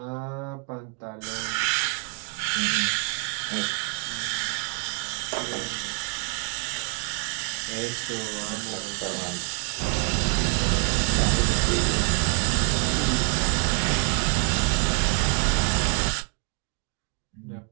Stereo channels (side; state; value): left; quieter; 36.9 dB